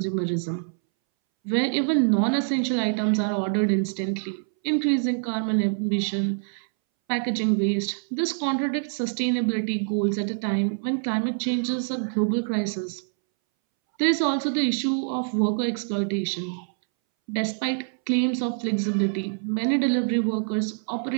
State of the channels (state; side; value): silent; left; 62 dB below the other